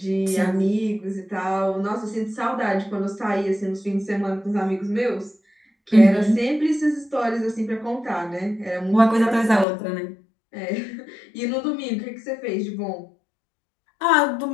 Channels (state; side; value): drops out; right; at 9.7 s